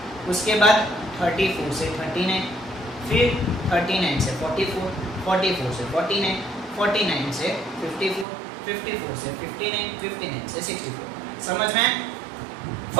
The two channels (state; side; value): drops out; left; at 8.2 s